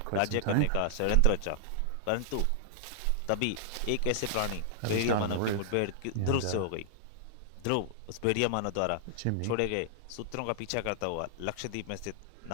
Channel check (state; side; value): different; both; correlation -0.01